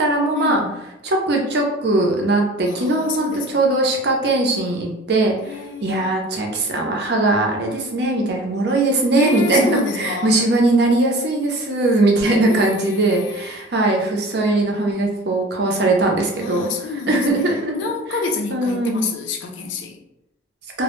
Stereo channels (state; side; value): normal; both; correlation 0.41